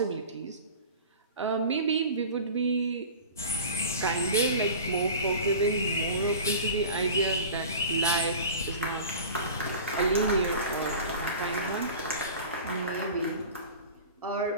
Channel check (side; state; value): both; inverted; correlation -0.37